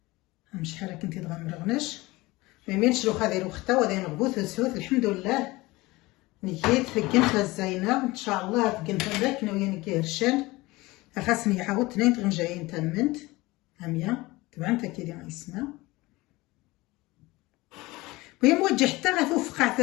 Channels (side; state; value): right; quieter; 20.9 dB